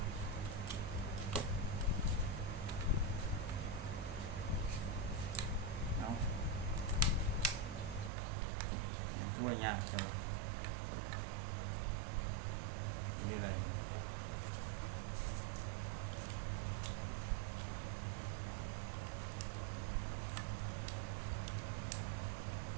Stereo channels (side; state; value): left; drops out; at 8.1 s